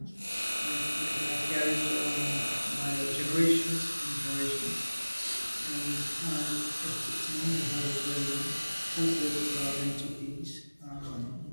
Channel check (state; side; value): inverted; both; correlation -1.00